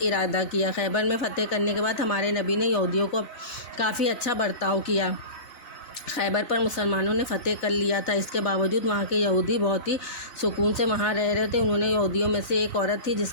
کیا۔ خیبر میں فتح کرنے کے بعد ہمارے نبی نے یہودیوں کو کافی اچھا برتاؤ کیا۔ خیبر پر مسلمانوں نے فتح کر لیا تھا، اس کے باوجود وہاں کے یہودی بہت ہی سکون سے وہاں رہ رہے تھے۔ انہوں نے یہودیوں میں سے ایک عورت تھی جس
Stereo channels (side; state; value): right; late; 4.0 ms